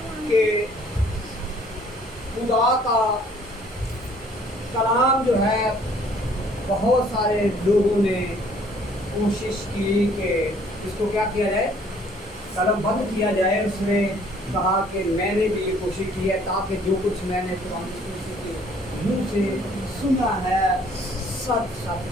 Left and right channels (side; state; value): both; normal; correlation 0.59